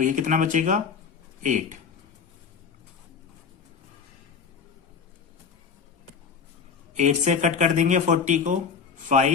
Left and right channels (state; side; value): quieter; right; 6.1 dB